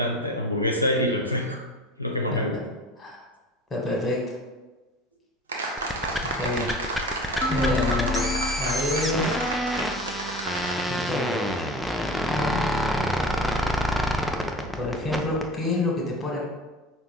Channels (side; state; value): both; normal; correlation 0.36